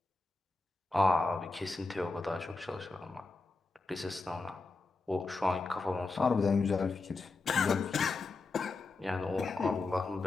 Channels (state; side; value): quieter; right; 3.7 dB